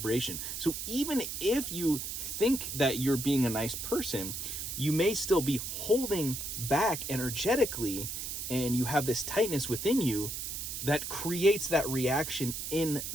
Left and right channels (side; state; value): right; noise; hiss, 5 dB below the sound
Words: So even if you think that you're being a nice person, you may still be holding back energetically, and you have this tightness within you that creates that reaction in